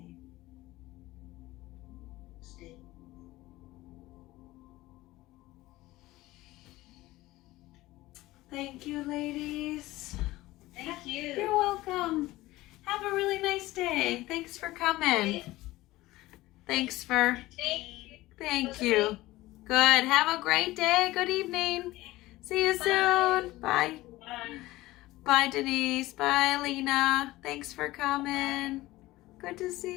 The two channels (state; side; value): quieter; right; 18.0 dB